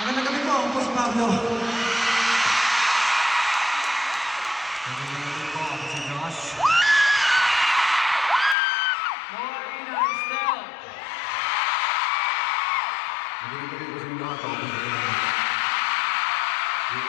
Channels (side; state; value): right; drops out; at 8.6 s